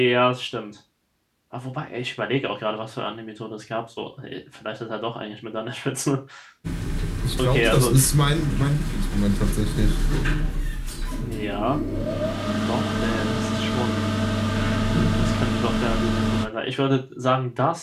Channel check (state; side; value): identical; both; correlation 1.00